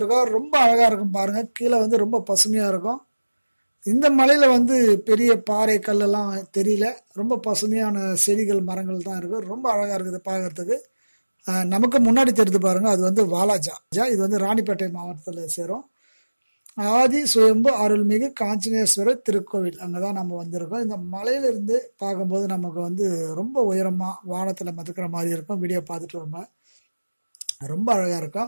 ரொம்ப அழகா இருக்கும் பாருங்க. கீழே வந்து ரொம்ப பசுமையா இருக்கும். இந்த மலையில வந்து பெரிய பாறை கல்லெல்லாம் தெரியல. ரொம்ப பசுமையான செடிகள் மரங்கள் தான் இருக்கு. ரொம்ப அழகா இருக்குது பார்க்கறதுக்கு. நமக்கு முன்னாடி தெரியுது பாருங்க. அது வந்து வாலாஜா. இது வந்து ராணிப்பேட்டை மாவட்டத்தில் சேரும். ஆதி சுயம்பு அருள்மிகு காஞ்சிநேஸ்வரர் திருக்கோவில் அங்கே தான் நம்ம வந்திருக்கோம். இந்த மலையிலிருந்து பார்க்கும்போது நமக்கு வந்து ரொம்ப உயரமாக வானத்தில் மிதக்கிற மாதிரி இருக்கும். வீடியோ பார்த்துட்டு ரொம்ப அழகாக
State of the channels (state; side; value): inverted; both; correlation -1.00